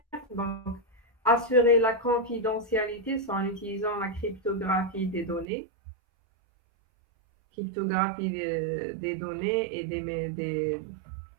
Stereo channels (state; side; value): drops out; left; at 5.5 s